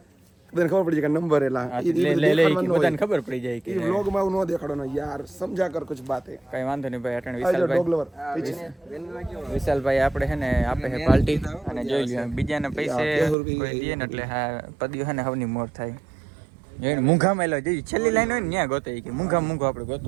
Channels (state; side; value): drops out; left; at 13.4 s